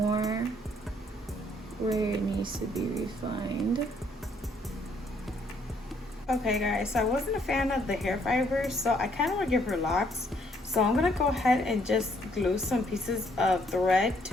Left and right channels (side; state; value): both; normal; correlation 0.68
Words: where it needs to be refined. Okay guys, so I wasn't a fan of the hair fibers, so I kind of want to give her locks. So I'm going to go ahead and just glue some pieces of thread